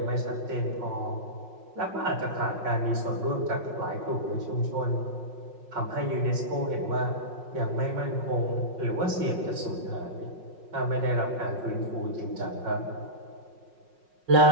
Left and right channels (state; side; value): late; left; 5.5 ms